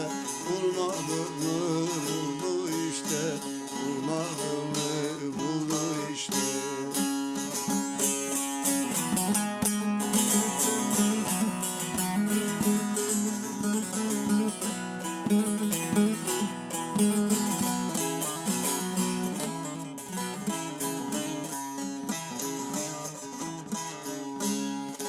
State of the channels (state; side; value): identical; both; correlation 1.00